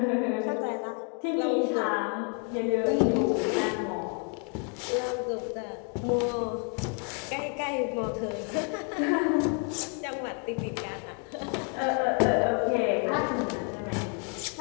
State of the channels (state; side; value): quieter; right; 39.2 dB